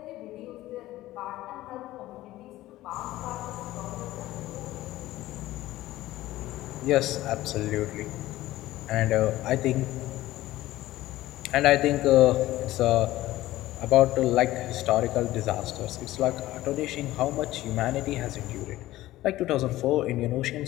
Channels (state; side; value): quieter; right; 16.1 dB